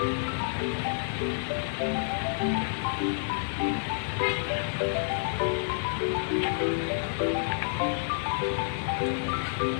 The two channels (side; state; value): right; silent; 59 dB below the other